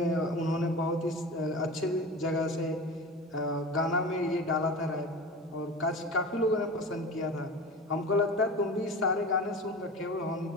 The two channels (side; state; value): both; normal; correlation 0.32